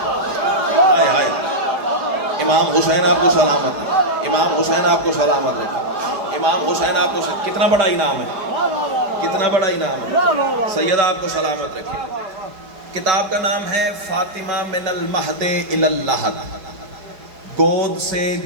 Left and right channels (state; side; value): late; left; 4.8 ms